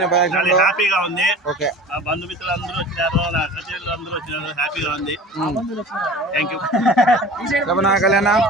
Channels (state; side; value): normal; both; correlation 0.40